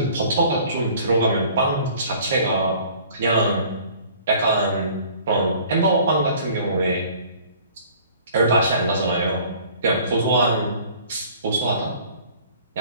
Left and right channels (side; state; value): both; inverted; correlation -0.51